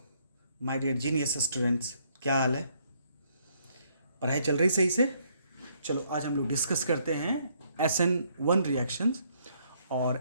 my dear genius students, क्या हाल है? पढ़ाई चल रही सही से? चलो आज हम लोग डिस्कस करते हैं SN1 रिएक्शंस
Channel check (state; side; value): inverted; both; correlation -0.69